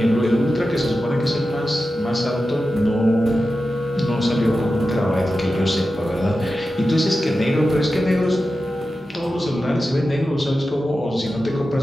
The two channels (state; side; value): normal; both; correlation 0.92